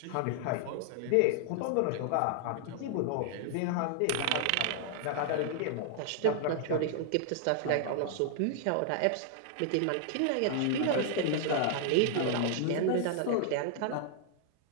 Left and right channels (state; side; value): different; both; correlation 0.00